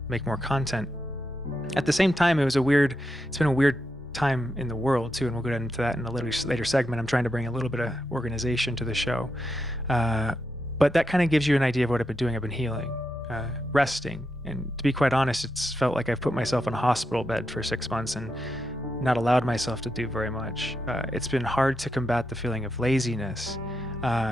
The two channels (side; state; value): both; normal; correlation 0.85